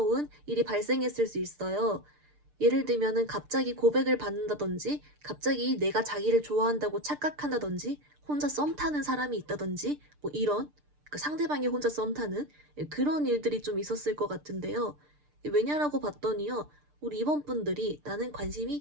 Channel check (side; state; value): left; late; 6.7 ms